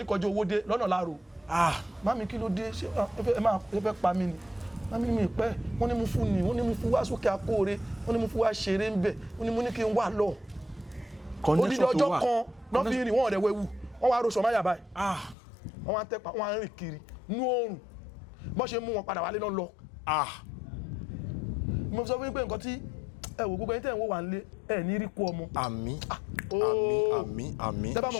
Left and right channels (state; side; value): drops out; right; at 15.4 s